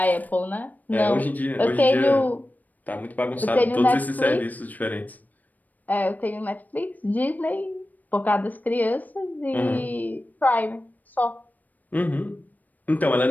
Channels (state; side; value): late; right; 0.081 ms